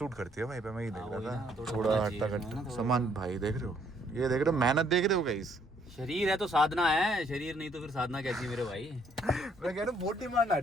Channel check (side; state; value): both; normal; correlation 0.67